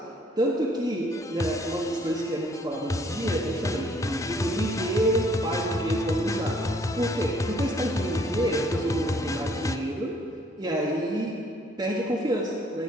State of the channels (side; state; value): both; normal; correlation 0.62